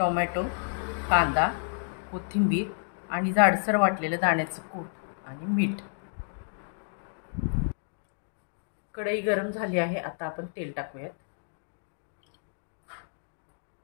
कांदा, कोथिंबीर आणि जाडसर वाटलेलं दाण्याचं कूट आणि मीठ। कढई गरम झाली आहे, आता आपण तेल टाकूयात।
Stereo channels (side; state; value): right; silent; digital silence